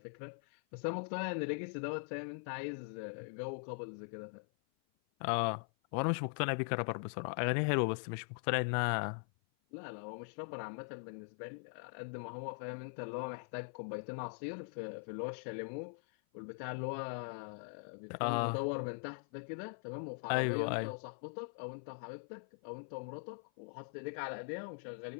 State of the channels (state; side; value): silent; right; 50 dB below the other